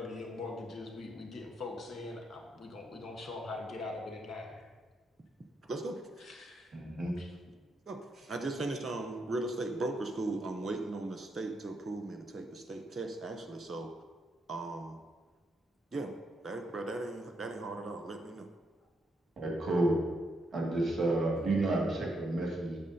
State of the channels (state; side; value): normal; both; correlation 0.79